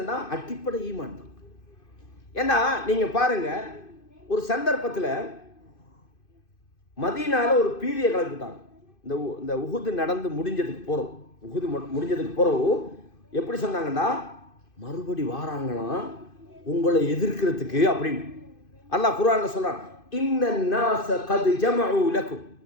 அடிப்படை ஈமான் தான். ஏன்னா நீங்கள் பாருங்க, ஒரு சந்தர்ப்பத்தில் மதீனால ஒரு பீதியை கலக்கிட்டாங்க. இந்த உஹுது நடந்து முடிஞ்சதுக்கு போகிறோம் எப்படி சொன்னாங்கன்னா, மறுபடி வாராங்களாம் உங்களை எதிர்க்கிறதுக்கு அப்படின்னு அல்லாஹ் குர்ஆன்ல சொல்றான். இன்னன்னாஸ கத் ஜமஉ லக்கும்,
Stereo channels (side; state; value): right; late; 2.5 ms